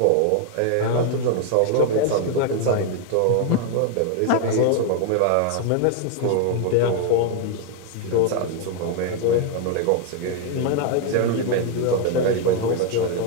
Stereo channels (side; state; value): both; different; correlation 0.01